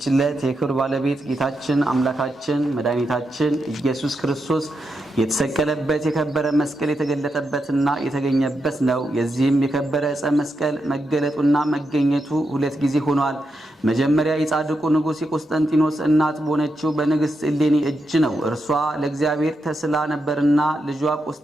ዕለት የክብር ባለቤት ጌታችን አምላካችን መድኃኒታችን ኢየሱስ ክርስቶስ የተሰቀለበት የከበረ መስቀል የተገለጠበትና የተገኘበት ነው። የዚህም የከበረ ዕፀ መስቀል መገለጡና መገኘቱ ሁለት ጊዜ ሆኗል። መጀመሪያ የጻድቁ ንጉሥ የቆስጠንጢኖስ እናት በሆነችው በንግሥት እሌኒ እጅ ነው። እርሷ ለእግዚአብሔር ተስላ ነበርና ልጇ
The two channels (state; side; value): normal; both; correlation 0.85